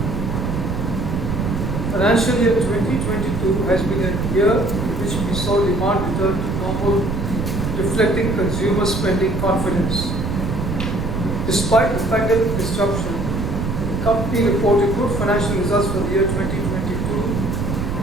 Financial year 2022 has been a year in which we saw demand return to normal, reflecting consumer spending confidence. Despite the pandemic disruption, the company reported good financial results for the year 2022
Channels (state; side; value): noise; right; rumble, 2 dB below the sound